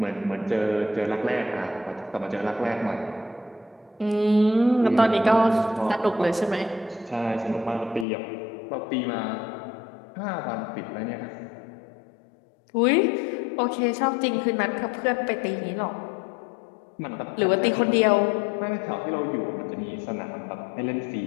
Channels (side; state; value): right; drops out; at 8.1 s